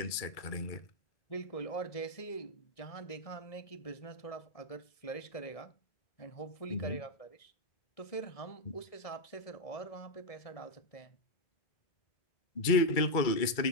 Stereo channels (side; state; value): right; late; 2.3 ms